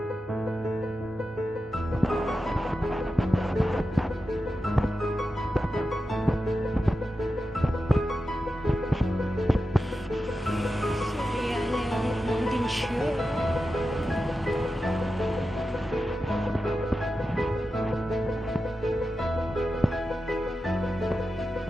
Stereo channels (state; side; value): normal; both; correlation 0.91